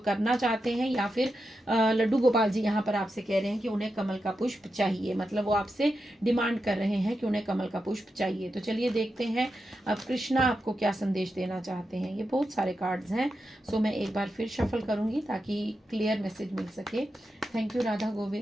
चाहते हैं, या फिर लड्डू गोपाल जी यहाँ पर आपसे कह रहे हैं कि उन्हें कमल का पुष्प चाहिए, मतलब वो आपसे डिमांड कर रहे हैं कि उन्हें कमल का पुष्प चाहिए। तो चलिए देखते हैं अब कृष्णा आपको क्या संदेश देना चाहते हैं। ये बहुत सारे कार्ड्स हैं, सो मैं एक बार फिर शफल करूंगी ताकि क्लियर मैसेज मिल सके। Thank you Radha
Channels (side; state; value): both; normal; correlation 0.88